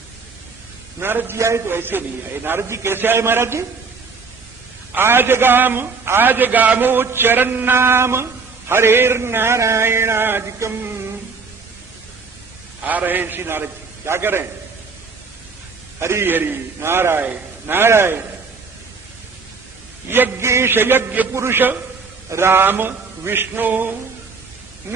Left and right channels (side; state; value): left; quieter; 4.7 dB